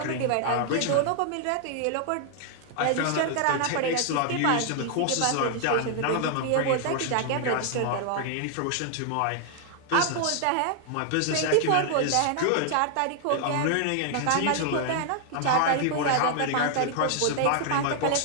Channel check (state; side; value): different; both; correlation 0.00